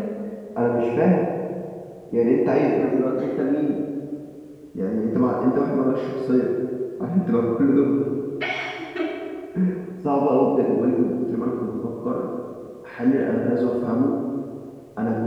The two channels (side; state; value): both; identical; correlation 1.00